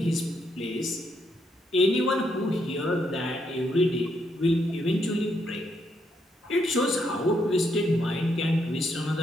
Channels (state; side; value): normal; both; correlation 0.76